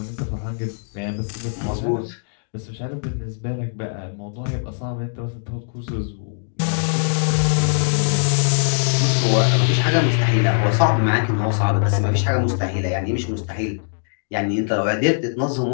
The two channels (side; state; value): right; silent; digital silence